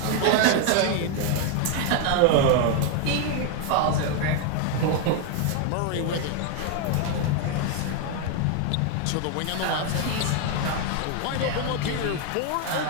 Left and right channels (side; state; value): both; different; correlation 0.01